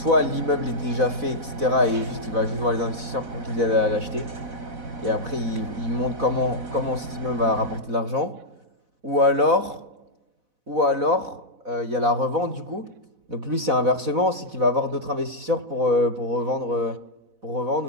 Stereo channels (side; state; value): left; late; 4.0 ms